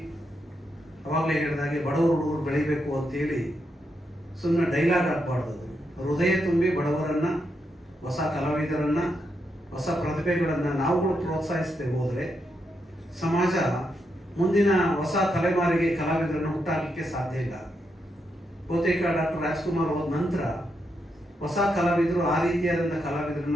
ಅವಾಗಲೇ ಹೇಳಿದಾಗೆ ಬಡವರು ಹುಡುಗರು ಬೆಳಿಬೇಕು ಅಂತೇಳಿ ಸುಮ್ಮನೆ ಡೈಲಾಗ್ ಹಾಕ್ಬಾರ್ದು. ಹೃದಯ ತುಂಬಿ ಬಡವರನ್ನ, ಹೊಸ ಕಲಾವಿದರನ್ನ, ಹೊಸ ಪ್ರತಿಭೆಗಳನ್ನು ನಾವುಗಳು ಪ್ರೋತ್ಸಾಹಿಸ್ತೇವೆ ಹೋದರೆ ಸಮಾಜ ಮುಂದಿನ ಹೊಸ ತಲೆಮಾರಿಗೆ ಕಲಾವಿದರನ್ನು ಹುಟ್ಟಾಕಲಿಕ್ಕೆ ಸಾಧ್ಯ ಇಲ್ಲ. ಬಹುತೇಕ ಡಾಕ್ಟರ್ ರಾಜ್ಕುಮಾರ್ ಹೋದ ನಂತರ ಹೊಸ ಕಲಾವಿದರು ಆ ರೀತಿಯಾದಂಥ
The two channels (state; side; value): normal; both; correlation 0.82